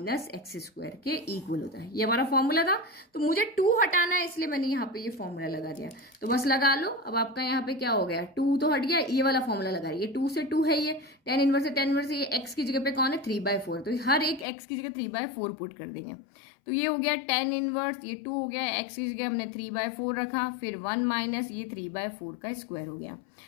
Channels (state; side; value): drops out; right; at 14.5 s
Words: x square के इक्वल होता है। ये हमारा फॉर्मूला था, तो मुझे 2 हटाना है, इसलिए मैंने यहाँ पे ये फॉर्मूला लगा दिया। तो बस लगा लो, अब आपका यहाँ पे क्या हो गया, 2 तो हट गया, ये वाला फॉर्मूला लगा रही है, 2 से 2 है, ये tan इनवर्स से tan इनवर्स, ये x की जगह पे कौन है 3/4, तो हर एक x की जगह 3/4 पुट कर देंगे। तो ये हो गया tan इनवर्स, ये 2 हो गया, x की जगह हमने 3/4 रखा, फिर 1 माइनस ये 3/4 का स्क्वायर हो गया।